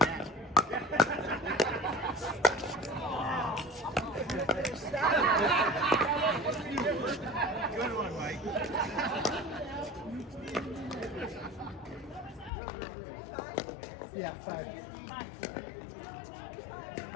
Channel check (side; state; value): right; drops out; at 12.5 s